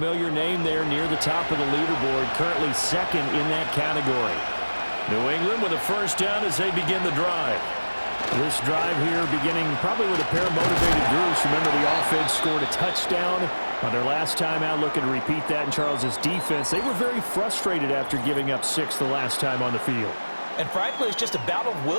name there near the top of the leaderboard, currently second in that category. New England with a first down as they begin the drive. This drive here beginning probably with a pair of motivated groups. Remember, the offense scored a touchdown on their last time out. Looking to repeat that in Charles's defense. They were very frustrated after giving up 6 the last time on the field. And frankly, it's just a battle of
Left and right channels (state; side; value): inverted; both; correlation -1.00